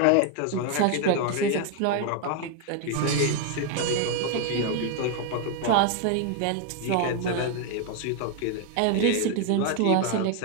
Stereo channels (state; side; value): different; both; correlation 0.01